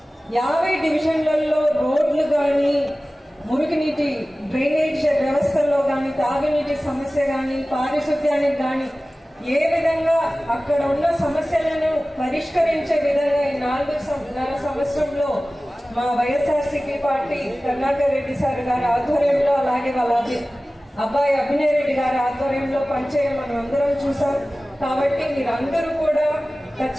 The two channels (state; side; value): normal; both; correlation 0.97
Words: 50 డివిజన్లలో రోడ్లు కానీ, మురుగునీటి డ్రైనేజ్ వ్యవస్థల్లో కానీ, తాగునీటి సమస్య కానీ, పారిశుద్ధ్యానికి కానీ ఏ విధంగా అక్కడ ఉన్న సమస్యలను పరిష్కరించే విధంగా ఈ 4.5 సంవత్సరంలో మా వైఎస్ఆర్సీపీ పార్టీ కరుణాకర్ రెడ్డి సార్ గారి ఆధ్వర్యంలో, అలాగే వాళ్ళ అబ్బాయి అభినయ్ రెడ్డి గారి ఆధ్వర్యంలో పనిచేయడం మనం అందరం చూసాం. కాబట్టి మీరందరూ కూడా